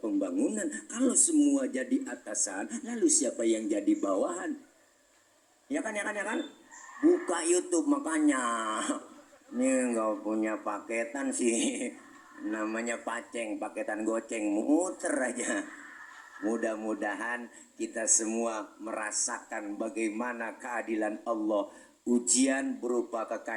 Kalau semua jadi atasan, lalu siapa yang jadi bawahan? ya kan, buka YouTube makanya. Ini nggak punya paketan sih, namanya paceng, paketan goceng, muter aja. Mudah-mudahan kita semua merasakan bagaimana keadilan Allah. Ujian berupa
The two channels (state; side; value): identical; both; correlation 1.00